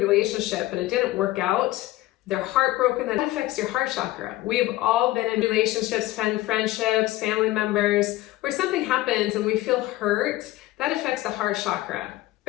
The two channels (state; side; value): quieter; right; 16.9 dB